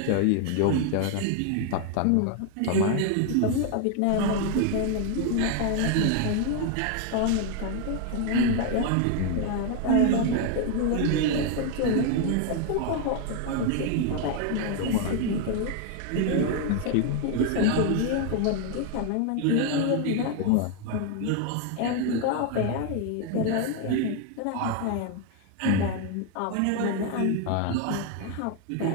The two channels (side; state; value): both; different; correlation 0.01